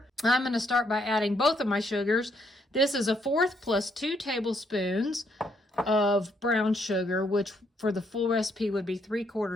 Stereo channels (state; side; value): normal; both; correlation 0.72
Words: I'm going to start by adding both of my sugars. This is 1/4 plus 2 tablespoons of brown sugar, which for the full recipe would be